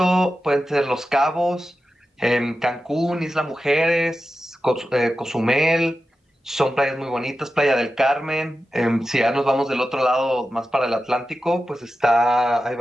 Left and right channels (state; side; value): normal; both; correlation 0.92